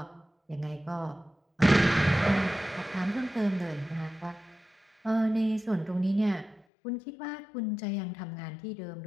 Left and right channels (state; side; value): drops out; right; at 6.7 s